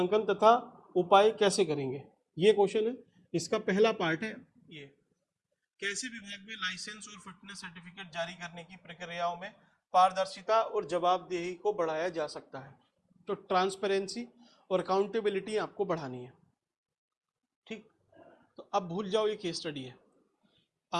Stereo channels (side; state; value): both; identical; correlation 1.00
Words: तथा उपाय कैसे करेंगे, ये क्वेश्चन है। इसका पहला पार्ट है ये, कैसे विभाग में लाइसेंस और फिटनेस सर्टिफिकेट जारी करने की प्रक्रियाओं में पारदर्शिता और जवाबदेही को बढ़ाया जा सकता है। तो ट्रांसपेरेंसी और अकाउंटेबिलिटी आपको बढ़ानी है, ठीक। तो अब भूल जाओ ये केस स्टडी है,